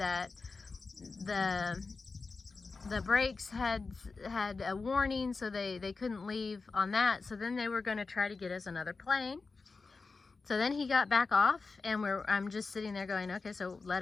the brakes had a warning, so they couldn't leave on that. So then they were going to try to get us another plane. So then he got back off, and I'm just sitting there going, okay, so let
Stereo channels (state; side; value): quieter; right; 4.2 dB